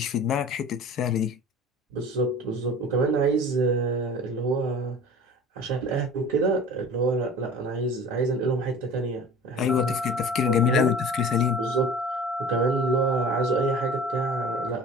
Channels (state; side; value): normal; both; correlation 0.41